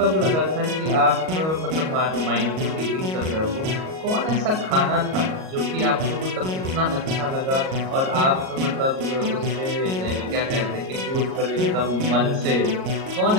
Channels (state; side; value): late; left; 38 ms